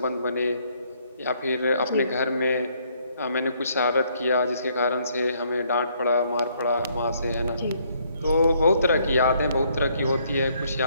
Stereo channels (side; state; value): both; inverted; correlation -0.68